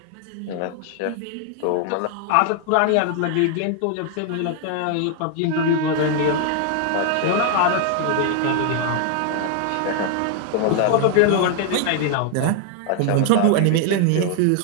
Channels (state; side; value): different; both; correlation 0.00